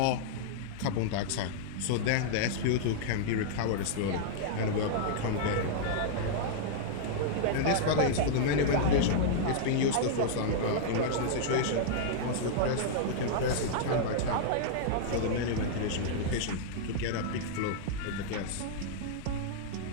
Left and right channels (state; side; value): different; both; correlation -0.02